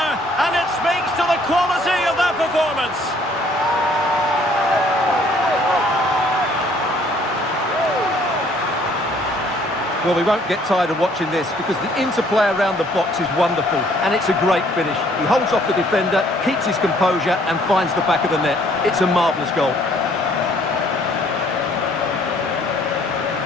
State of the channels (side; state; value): both; normal; correlation 0.61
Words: Quality of that performance. Well, we won't get tired of watching this because the interplay around the box is wonderful and it's a great finish. He holds off the defender, keeps his composure and finds the back of the net. It's a marvellous goal.